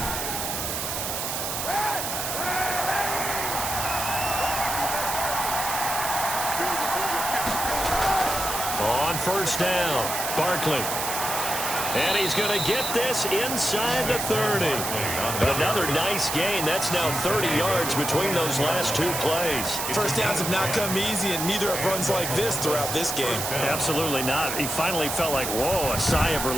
First down, Barkley. And he's going to get this inside the 30. Another nice gain. That's now 30 yards between those last 2 plays. First downs have not come easy, and neither have runs like this throughout this game. Absolutely not. He finally felt like, whoa, a sigh of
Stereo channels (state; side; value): noise; right; hiss, 3 dB below the sound